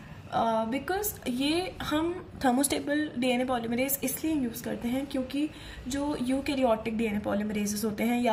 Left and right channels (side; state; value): both; identical; correlation 1.00